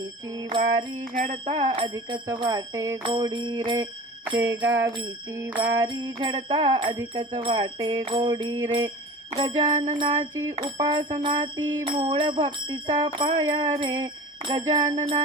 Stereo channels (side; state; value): both; normal; correlation 0.38